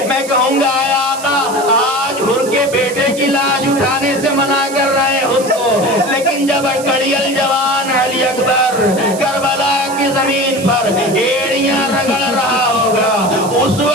میں کہوں گا اے آقا آج حر کے بیٹے کی لاش اٹھانے سے منع کر رہے ہیں حر کو, لیکن جب کڑیل جوان علی اکبر کربلا کی زمین پر ایڑیاں رگڑ رہا ہوگا اس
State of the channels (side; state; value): right; noise; hiss, 13 dB below the sound